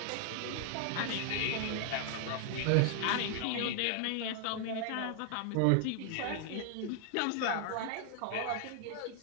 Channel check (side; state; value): both; different; correlation 0.00